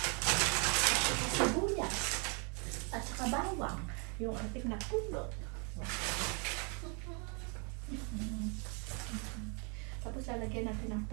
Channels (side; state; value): left; quieter; 35.7 dB